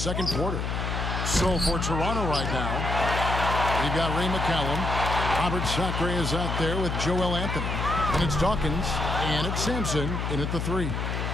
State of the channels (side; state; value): left; noise; hum, 2 dB below the sound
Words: quarter. So for Toronto right now, we've got Ray McCallum. Robert Sacre is out there with Joel Anthony. And it's Dawkins, and it's Sampson in at the 3.